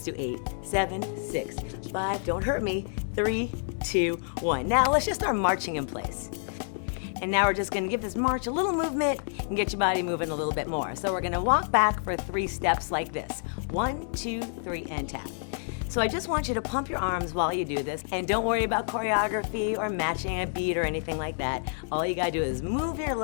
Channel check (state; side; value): silent; right; digital silence